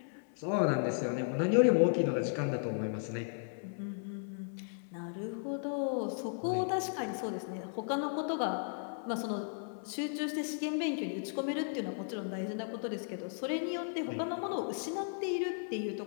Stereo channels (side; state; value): right; silent; 54 dB below the other